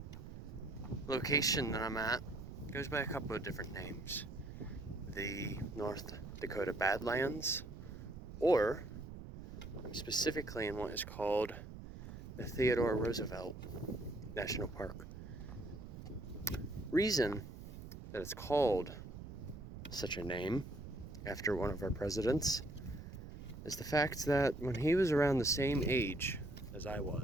location that I'm at goes by a couple of different names. The North Dakota Badlands, or I'm specifically in what is called the Theodore Roosevelt National Park. Reason that it's called such a name after one of our presidents is the fact that when he was around the same age as I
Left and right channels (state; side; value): noise; right; rumble, 11 dB below the sound